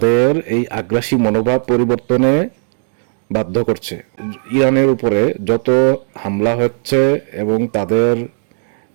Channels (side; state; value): left; silent; 61 dB below the other